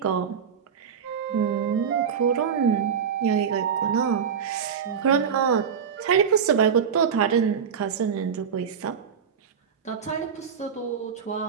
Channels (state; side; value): quieter; left; 7.2 dB